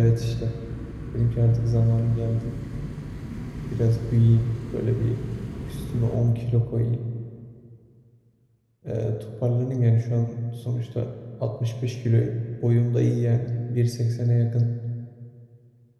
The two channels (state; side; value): identical; both; correlation 1.00